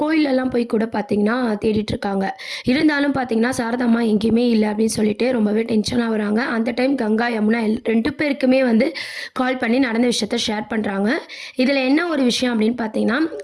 கோயிலெல்லாம் போய் கூட பார்த்தீங்கன்னா, தேடிட்டு இருக்காங்க. இருந்தாலும் பார்த்தீங்கன்னா, சாரதா அம்மா எங்கேயுமே இல்ல அப்படின்னு சொல்லிட்டு ரொம்பவே டென்ஷன் ஆகுறாங்க. அந்த டைம் கங்கா, யமுனா 2 பேருக்குமே வந்து கால் பண்ணி நடந்த விஷயத்த ஷேர் பண்றாங்க. இதில் என்ன ஒரு விஷயம் அப்படின்னு பார்த்தீங்கன்னா,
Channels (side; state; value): both; identical; correlation 1.00